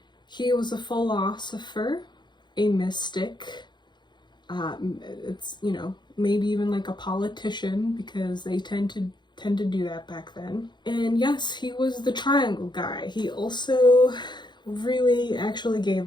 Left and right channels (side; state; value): right; late; 0.21 ms